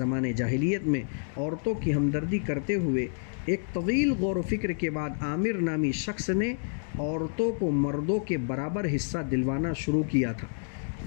جاہلیت میں عورتوں کی ہمدردی کرتے ہوئے ایک طویل غور و فکر کے بعد عامر نامی شخص نے عورتوں کو مردوں کے برابر حصہ دلوانا شروع کیا تھا۔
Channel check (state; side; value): silent; right; digital silence